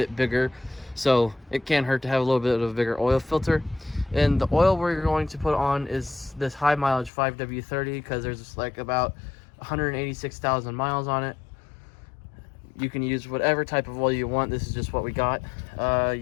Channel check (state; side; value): drops out; right; at 7.1 s